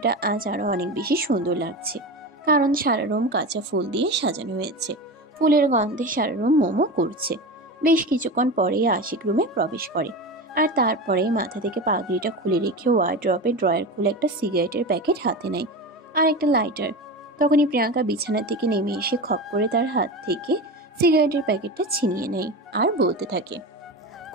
আজ আরো অনেক বেশি সুন্দর লাগছে, কারণ সারা রুম কাঁচা ফুল দিয়ে সাজানো হয়েছে। ফুলের গন্ধে সারা রুম মোমো করছে। বেশ কিছুক্ষণ পরেই আশিক রুমে প্রবেশ করে, আর তারপরে মাথা থেকে পাগড়িটা খুলে রেখে ওয়ার্ড্রপে ড্রয়ার খুলে একটা সিগারেটের প্যাকেট হাতে নেয় আর একটা লাইটার। তখনই প্রিয়াঙ্কা বিছানা থেকে নেমে এসে খপ করে তার হাত থেকে সিগারেটের প্যাকেটটা ছিনিয়ে নেয় আর বলতে থাকে,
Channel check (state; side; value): normal; both; correlation 0.25